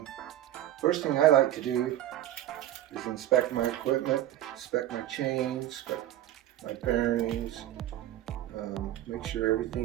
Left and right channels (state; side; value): quieter; left; 13.0 dB